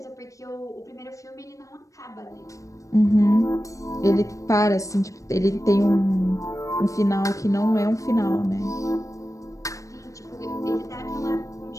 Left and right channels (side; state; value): right; late; 0.16 ms